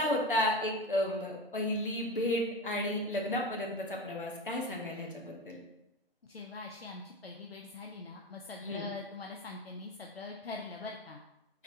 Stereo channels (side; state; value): both; normal; correlation 0.25